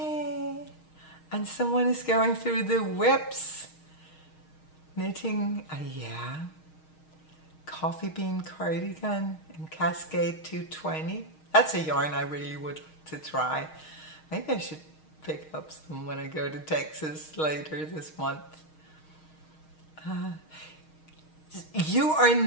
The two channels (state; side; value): late; right; 6.4 ms